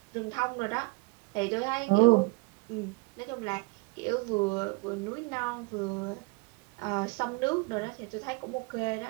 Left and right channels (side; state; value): left; quieter; 26.1 dB